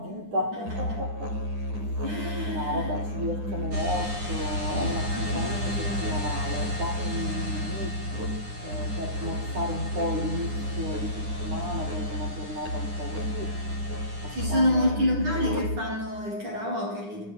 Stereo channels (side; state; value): left; late; 9.8 ms